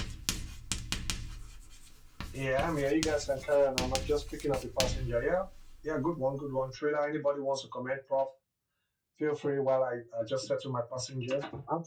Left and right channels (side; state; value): both; identical; correlation 1.00